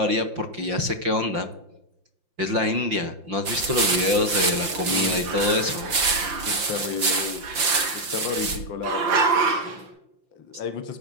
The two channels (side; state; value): left; late; 5.7 ms